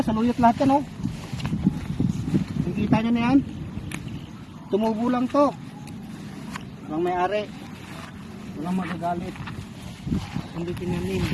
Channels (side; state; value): both; identical; correlation 1.00